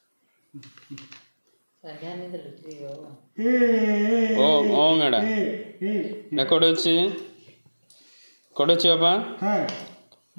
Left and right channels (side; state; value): both; inverted; correlation -1.00